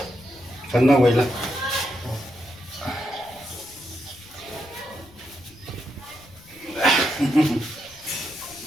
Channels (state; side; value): noise; left; rumble, 25 dB below the sound